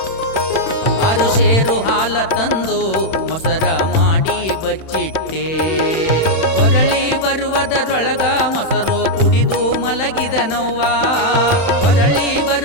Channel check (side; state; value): right; late; 31 ms